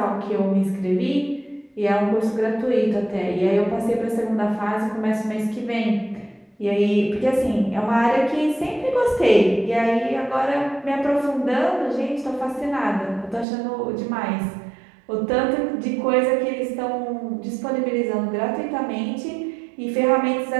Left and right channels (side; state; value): left; drops out; at 13.5 s